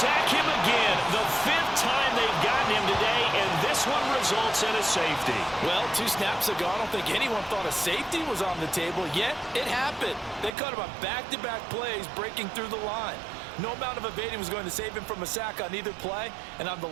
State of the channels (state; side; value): drops out; left; at 10.6 s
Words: him again. The 5th time they've gotten him today, and this one results in a safety. Well, 2 snaps ago, I don't think anyone thought a safety was on the table, yet it happened. They caught him on back-to-back plays breaking through the line. No amount of evading was going to save him from a sack on either play, and on the